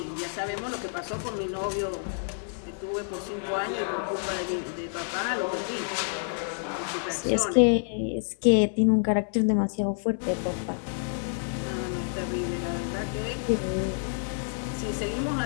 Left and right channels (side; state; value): right; silent; digital silence